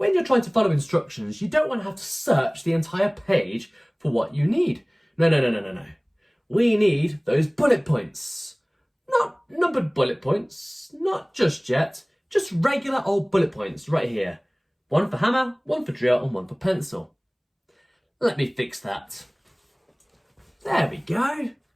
you're trying to follow instructions, you don't want to have to search the entire page for what you need. No. We need those bullet points. Not numbered bullet points, not just yet, just regular old bullet points right here. One for hammer, one for drill, and one for pencil. Let me fix that. There we go.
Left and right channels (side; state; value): both; identical; correlation 1.00